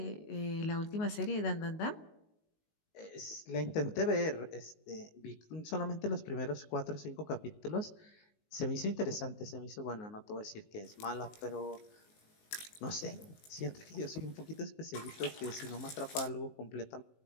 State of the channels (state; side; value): late; right; 19 ms